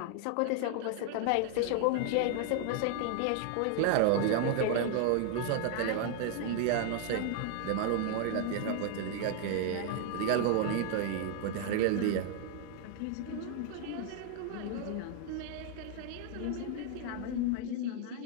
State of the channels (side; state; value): both; different; correlation 0.00